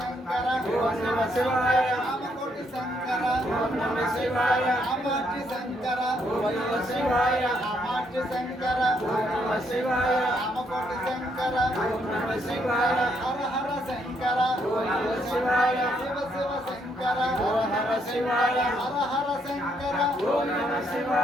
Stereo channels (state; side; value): normal; both; correlation 0.73